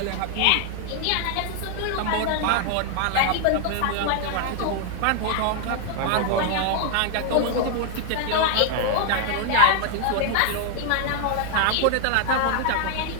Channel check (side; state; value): both; different; correlation 0.00